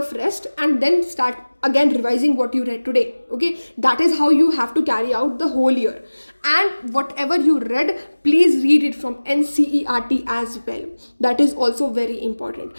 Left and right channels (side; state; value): both; inverted; correlation -1.00